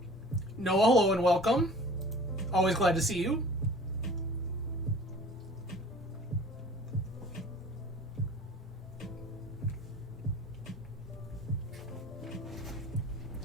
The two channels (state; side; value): normal; both; correlation 0.45